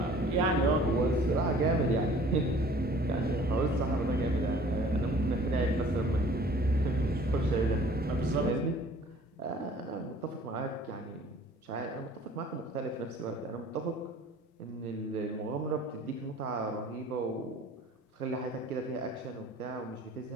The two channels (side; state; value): both; normal; correlation 0.51